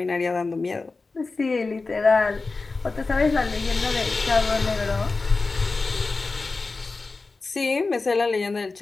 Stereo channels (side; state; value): right; quieter; 3.8 dB